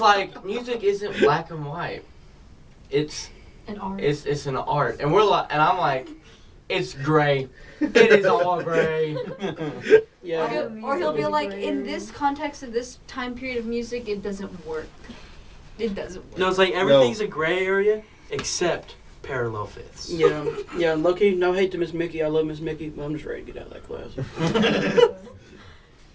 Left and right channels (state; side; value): identical; both; correlation 1.00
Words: music isn't black and white. It's An art. it's an art. And we're like, and I'm like, it's gray. It is all gray. Yeah. Or he'll be Music like, is in gray. this context of this time period of music, it doesn't work. It doesn't work. No, it's like everything's a gray area except parallel fifths. Yeah. Low-key, no hate to Miss Mickey. I love Miss Mickey, but I'm just ready to get out of that class.